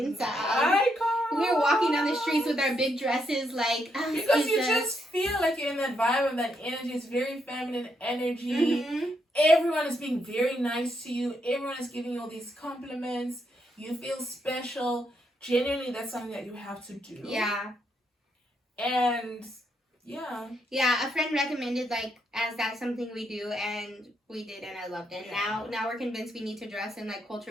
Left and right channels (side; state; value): both; normal; correlation 0.78